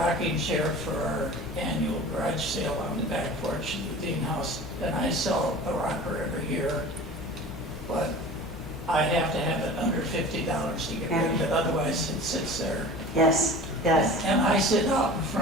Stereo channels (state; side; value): normal; both; correlation 0.39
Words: chair for our annual garage sale on the back porch of the Dean House, and I sell a rocker every year, but I have to have it under $50 to get rid of it, otherwise it sits there. Yes, yes. And I sit out in